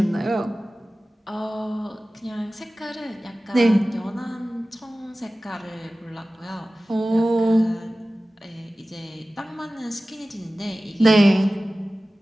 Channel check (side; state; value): both; normal; correlation 0.97